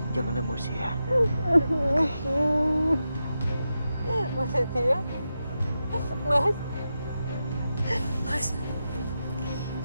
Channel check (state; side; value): inverted; both; correlation -0.89